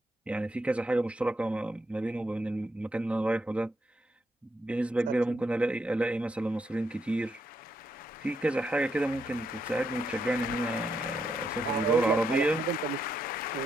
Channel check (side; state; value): both; normal; correlation 0.79